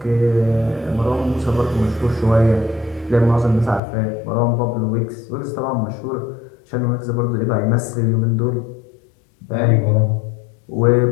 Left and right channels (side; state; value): right; drops out; at 3.8 s